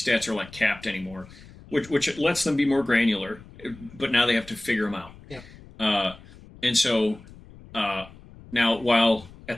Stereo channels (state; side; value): noise; left; rumble, 20 dB below the sound